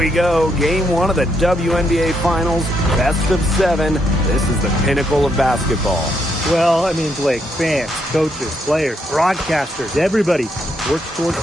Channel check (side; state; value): both; normal; correlation 0.77